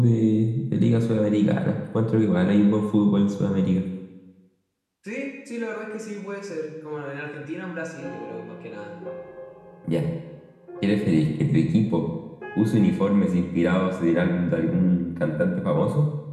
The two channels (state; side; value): identical; both; correlation 1.00